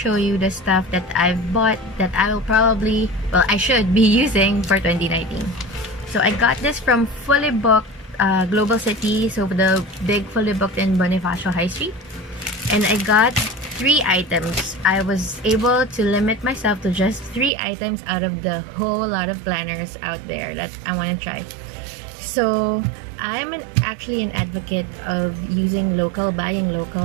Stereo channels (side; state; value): left; drops out; at 17.5 s